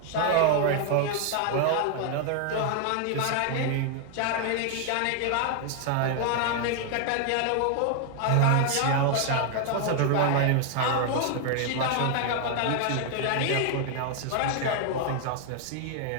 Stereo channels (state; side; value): different; both; correlation 0.00